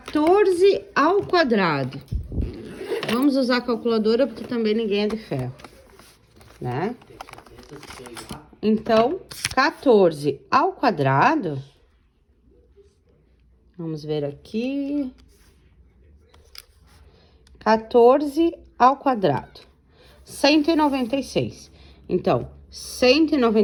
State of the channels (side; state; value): both; identical; correlation 1.00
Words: ao quadrado. Vamos usar a calculadora, porque também ninguém é de ferro, né? Então, 14 ao quadrado, vamos ver aqui, 14 ao quadrado, 196. Então,